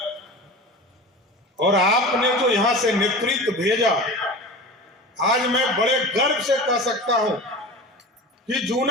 और आपने जो यहां से नेतृत्व भेजा, आज मैं बड़े गर्व से कह सकता हूं कि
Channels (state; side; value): normal; both; correlation 0.33